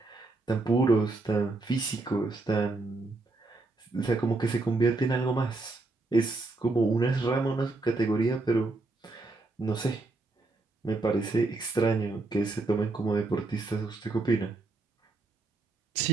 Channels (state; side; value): quieter; left; 3.3 dB